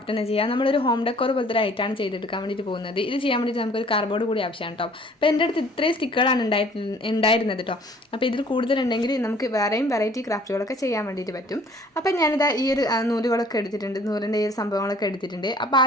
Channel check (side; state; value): both; normal; correlation 0.55